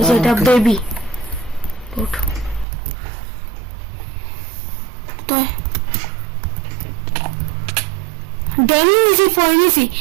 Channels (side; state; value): left; drops out; at 2.7 s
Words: যে এটা বেবি গোট। ড্যামেজ ফরেনিসি